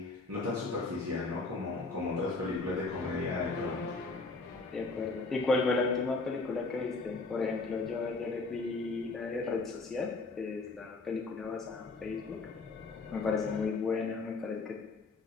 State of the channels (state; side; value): quieter; right; 3.7 dB